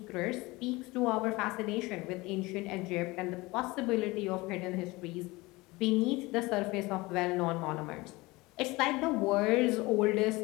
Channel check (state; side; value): quieter; right; 22.1 dB